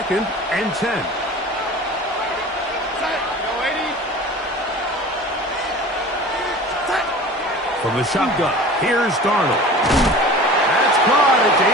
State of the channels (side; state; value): both; normal; correlation 0.39